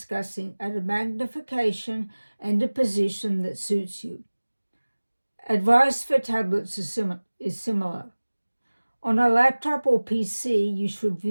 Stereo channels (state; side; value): inverted; both; correlation -1.00